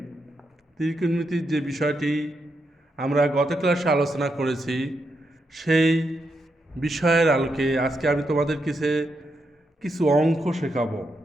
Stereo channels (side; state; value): both; normal; correlation 0.83